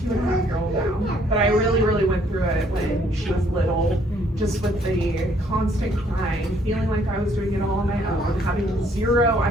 now, but I really went through it when she was little, just with the constant crying, feeling like I was doing it all on my own, having zero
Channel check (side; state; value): both; normal; correlation 0.65